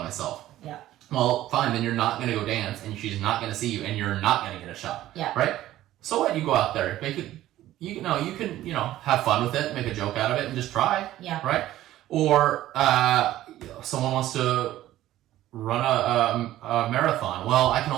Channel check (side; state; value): left; quieter; 14.2 dB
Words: myself. Yeah. Well, fine. Then you're not going to go dance and she's not going to see you and you're not going to get a shot. Yeah. Right? So what? You go out there, make it, you can, have fun with it, make a joke out of it and just try. Yeah. Right? Or someone wants to run a marathon. Well, I can